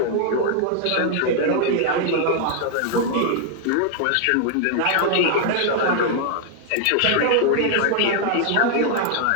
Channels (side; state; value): both; different; correlation 0.00